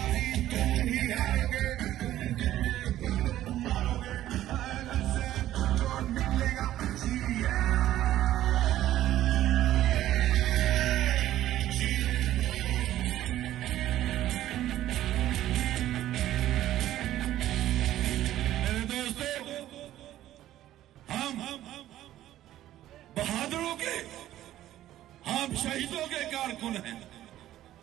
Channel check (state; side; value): quieter; left; 13.4 dB